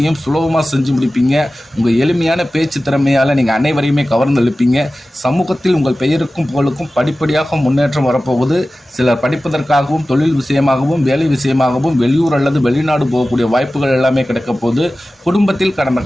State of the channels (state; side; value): normal; both; correlation 0.96